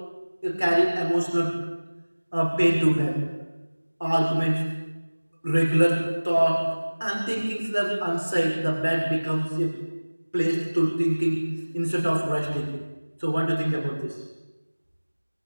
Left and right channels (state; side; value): inverted; both; correlation -1.00